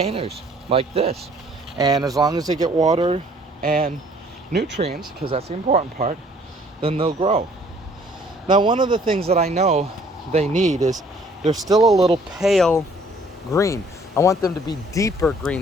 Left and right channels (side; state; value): both; normal; correlation 0.58